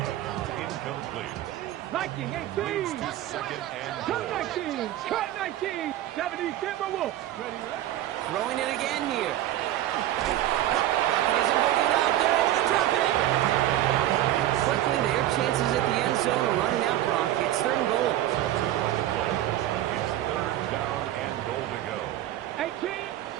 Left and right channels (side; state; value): left; quieter; 13.4 dB